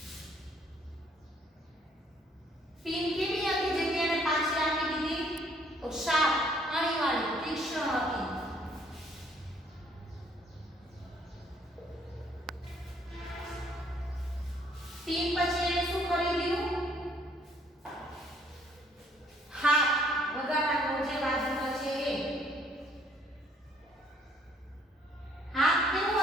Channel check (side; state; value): both; normal; correlation 0.63